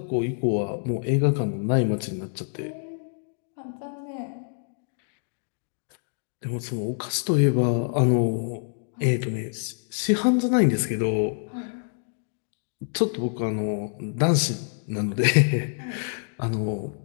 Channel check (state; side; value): silent; right; digital silence